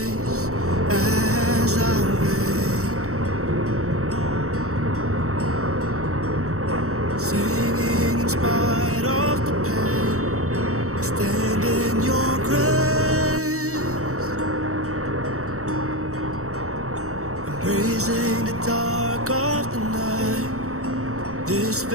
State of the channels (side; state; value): left; late; 0.64 ms